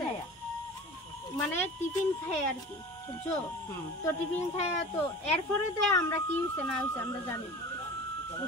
মানে টিফিন খাই আর কি, বুঝছো? তো টিফিন খাই, তো এরপরে দিয়ে আমরা কি হইছে না হইছে আমরা জানি না,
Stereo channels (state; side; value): normal; both; correlation 0.37